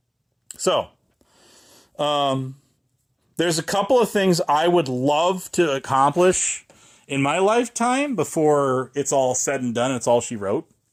So, there's a couple of things I would love to accomplish in my lifetime before it's all said and done. It's all she wrote.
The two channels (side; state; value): both; identical; correlation 1.00